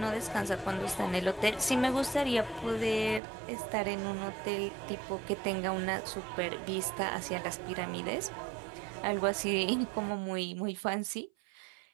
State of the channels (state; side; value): drops out; left; at 3.2 s